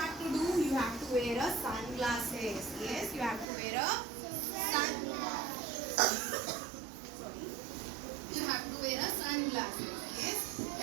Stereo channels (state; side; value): drops out; left; at 3.5 s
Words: to do? You have to wear a sunglasses. Yes, you have to wear a Sorry. You have to wear a sunglasses. Yes.